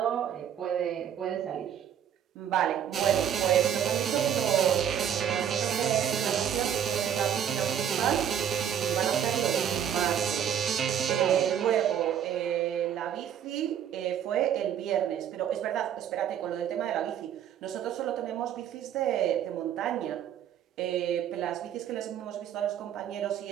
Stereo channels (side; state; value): left; quieter; 9.4 dB